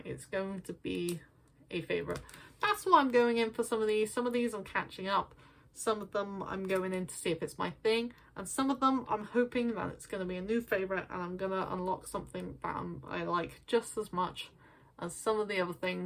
it's going to be a favourite. That's why I'm going in for some of these. Some of these I'm catching up. Some of them I'm going in to see if it's my thing. And some of them I'm hoping that it's going to be a new favourite, and I'm going to unlock something that I like just as much as some of the other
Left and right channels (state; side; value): identical; both; correlation 1.00